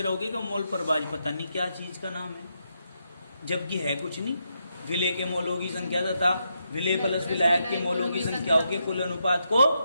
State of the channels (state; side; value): inverted; both; correlation -0.82